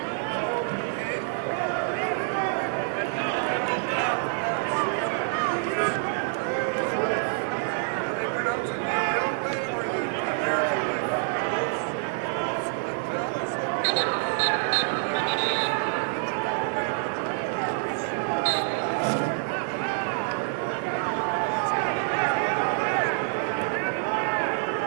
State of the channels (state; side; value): silent; left; 60 dB below the other